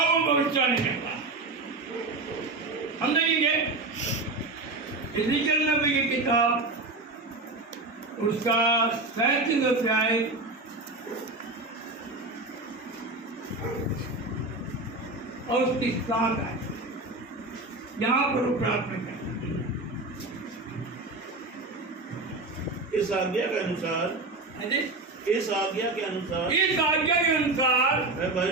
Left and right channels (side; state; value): left; quieter; 3.1 dB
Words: भविष्यवाणी करता हम देखेंगे इज़ेकियल नबी की किताब, उसका 37 अध्याय और उसकी 7 आयत, यहाँ पर वो प्रार्थना करते हैं। इस आज्ञा के अनुसार, इस आज्ञा के अनुसार, इस आज्ञा के अनुसार मैं